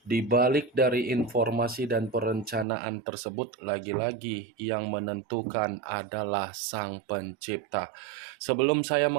di balik dari informasi dan perencanaan tersebut, lagi-lagi yang menentukan adalah Sang Pencipta. Sebelum saya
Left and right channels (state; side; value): drops out; left; at 2.7 s